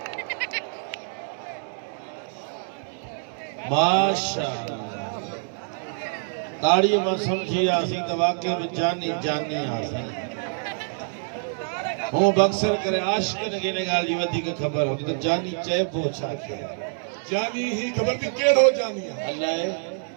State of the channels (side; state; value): left; silent; digital silence